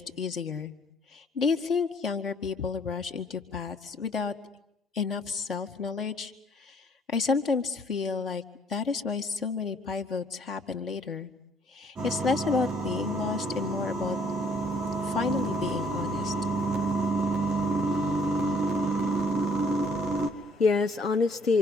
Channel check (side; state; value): both; normal; correlation 0.61